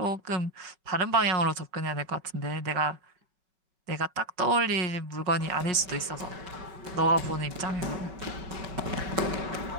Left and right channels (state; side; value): late; left; 5.3 ms